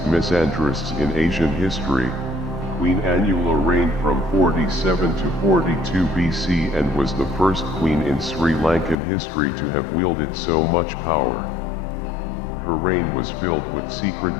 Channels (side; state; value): right; drops out; at 9.0 s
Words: misandrists in Asian history, Queen Anula reigned from 47 to 42 BC and was the first queen in Sri Lankan history to have wielded so much power. Her reign was filled with